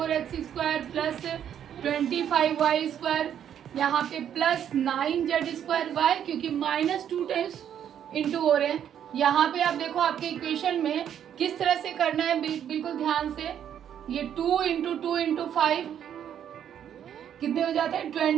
square plus 25y square. यहाँ पे प्लस 9z स्क्वायर. वाई? क्योंकि -2 टाइम्स इंटू हो रहे हैं. यहाँ पे आप देखो आपके इक्वेशन में किस तरह से करना है, बिल्कुल ध्यान से. ये 2 इंटू 2 इंटू 5 कितने हो जाते हैं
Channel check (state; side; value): quieter; left; 9.5 dB